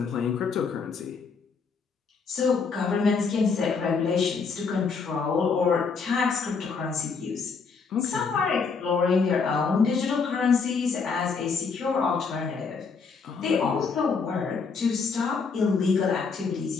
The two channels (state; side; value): quieter; right; 5.1 dB